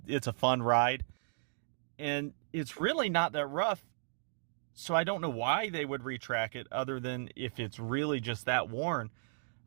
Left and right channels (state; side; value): silent; left; digital silence